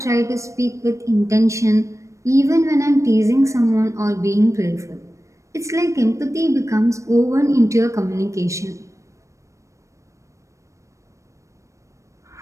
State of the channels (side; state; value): left; late; 0.15 ms